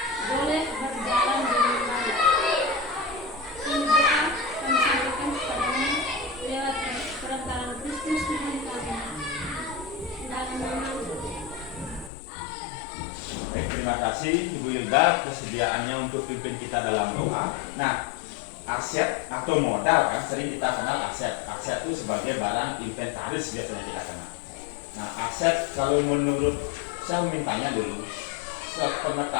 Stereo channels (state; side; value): drops out; right; at 12.1 s